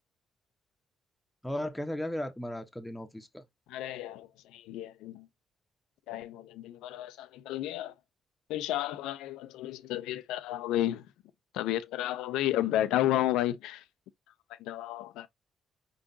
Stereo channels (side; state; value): right; quieter; 10.5 dB